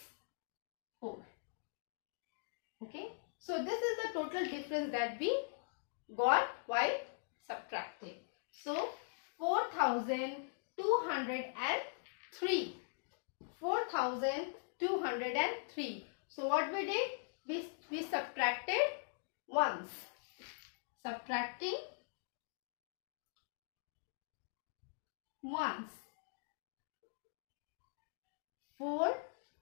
4. Okay. So this is the total difference that we got while subtracting. So 4,203. 4,203. So what we did? We subtracted once. Subtracting once. 4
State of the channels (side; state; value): right; silent; digital silence